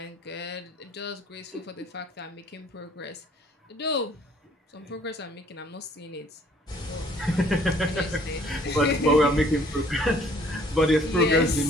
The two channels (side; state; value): both; normal; correlation 0.59